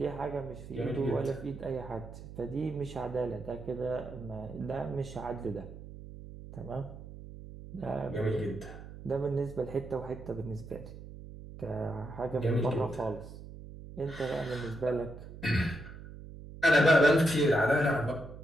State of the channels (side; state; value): right; noise; hum, 14 dB below the sound